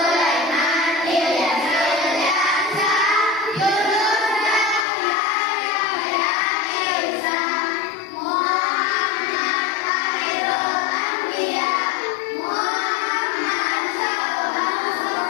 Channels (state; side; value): drops out; right; at 4.9 s